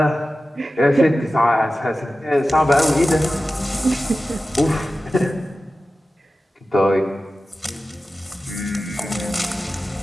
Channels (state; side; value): normal; both; correlation 0.95